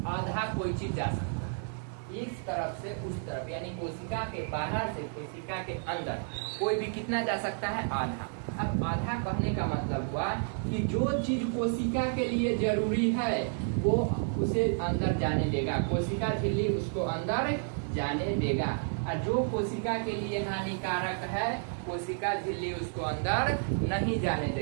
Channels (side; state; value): left; silent; 57 dB below the other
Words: आधा कोई चीज जा सकता है, इस तरफ से उस तरफ, यानी कोशिका के बाहर से कोशिका के अंदर कोई भी कितना जा सकता है? आधा। अब आधा कहने का मतलब हुआ कि जो चीज कोशिका के लिए जरूरी है वो उसे अंदर जाने देगा, कोशिका झिल्ली उसको अंदर जाने देगा, और जो कोशिका के लिए हानिकारक है कोशिका झिल्ली उसको अंदर नहीं जाने